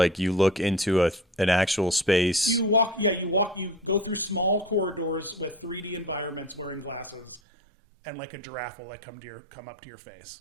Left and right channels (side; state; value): left; drops out; at 7.4 s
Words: you look into an actual space. You go through small corridors with 3D environments wearing glasses, and like a giraffe will come up to your face.